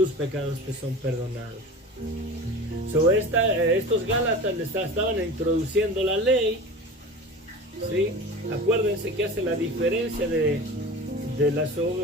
pecados te son perdonados. Estos Gálatas estaban introduciendo la ley, ¿sí? Acuérdense que hace la diferencia que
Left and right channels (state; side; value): normal; both; correlation 0.34